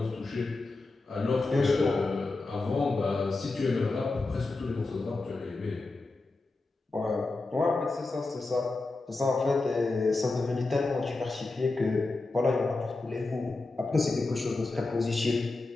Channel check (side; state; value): right; quieter; 3.4 dB